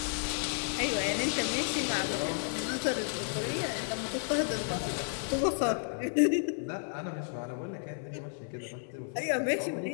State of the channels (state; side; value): silent; right; 56 dB below the other